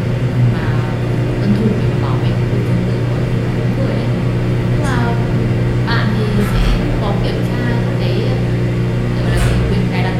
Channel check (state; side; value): identical; both; correlation 1.00